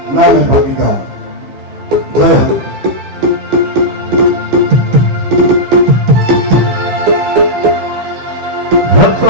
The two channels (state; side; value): late; left; 15 ms